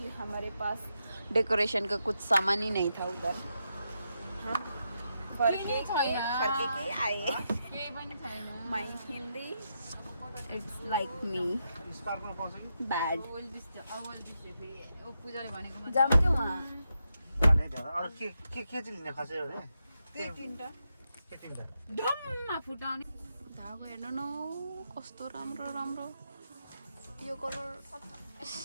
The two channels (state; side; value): inverted; both; correlation -0.84